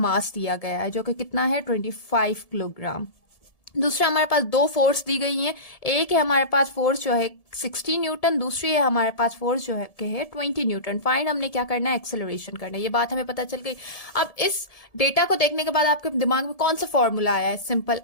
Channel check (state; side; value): late; right; 1.7 ms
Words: दिया गया है जो कि कितना है 25 किलोग्राम। दूसरा हमारे पास दो फोर्स दी गई हैं। एक है हमारे पास फोर्स जो है 60 न्यूटन, दूसरी है हमारे पास फोर्स जो है के है 20 न्यूटन। फाइंड हमने क्या करना है, एक्सेलरेशन करना है। ये बात हमें पता चल गई। अब इस डेटा को देखने के बाद आपके दिमाग में कौन सा फॉर्मूला आया है, simple